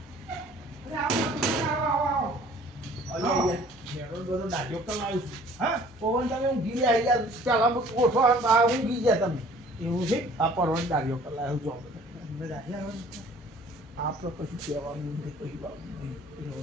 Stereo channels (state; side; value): normal; both; correlation 0.52